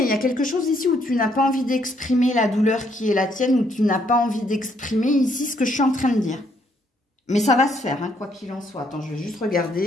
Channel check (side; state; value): both; normal; correlation 0.70